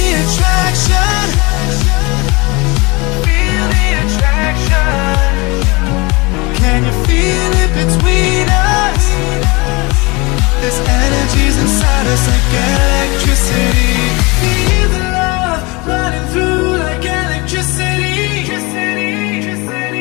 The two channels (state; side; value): quieter; right; 25.9 dB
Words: attraction? Feel the attraction. Can you feel it between us? This energy's inside us like electricity. Feel the love running through like electricity.